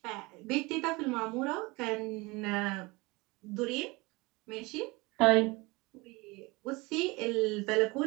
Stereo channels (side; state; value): left; quieter; 24.3 dB